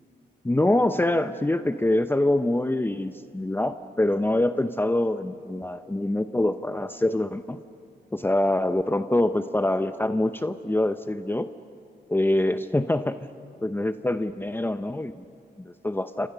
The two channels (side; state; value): both; normal; correlation 0.93